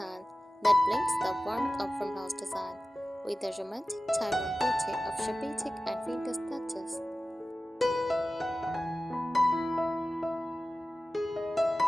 that blends the warmth of farmhouse design with the romantic time-worn beauty of shabby chic and vintage touches.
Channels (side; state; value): both; normal; correlation 0.95